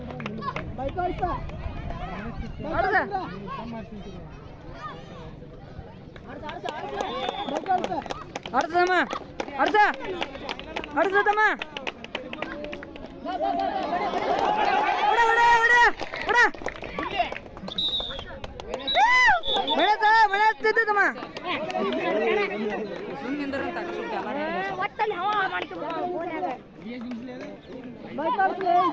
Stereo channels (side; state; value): both; identical; correlation 1.00